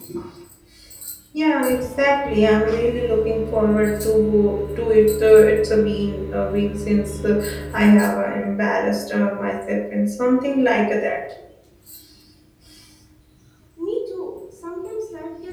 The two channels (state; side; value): identical; both; correlation 1.00